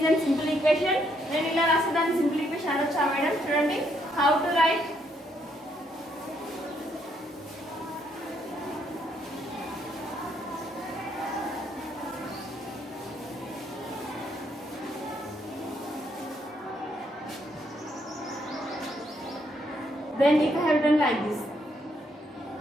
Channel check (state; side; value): normal; both; correlation 0.73